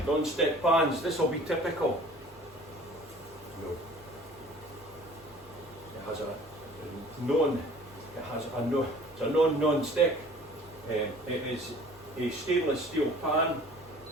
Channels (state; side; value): normal; both; correlation 0.49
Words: Non-stick pans, this will be typical. No. It has a non-stick. It is a stainless steel pan,